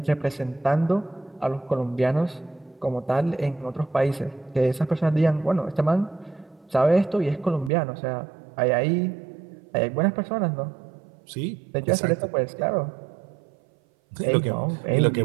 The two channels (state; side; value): drops out; left; at 7.7 s